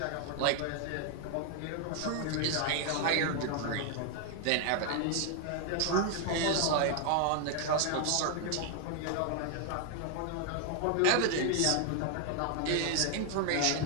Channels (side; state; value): both; different; correlation 0.00